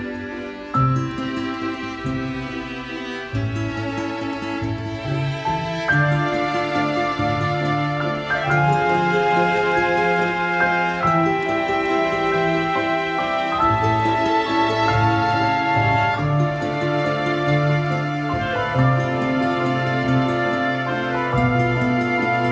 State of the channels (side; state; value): both; identical; correlation 1.00